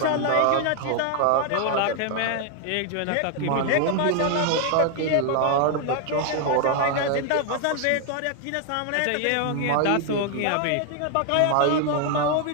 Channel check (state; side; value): different; both; correlation 0.00